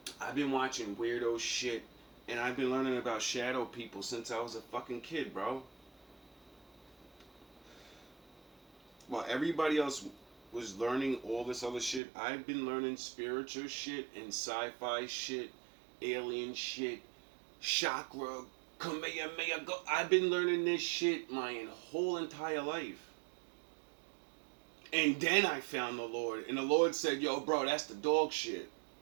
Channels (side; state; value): left; drops out; at 12.0 s